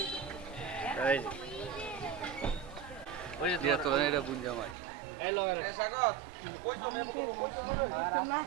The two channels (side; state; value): left; drops out; at 4.8 s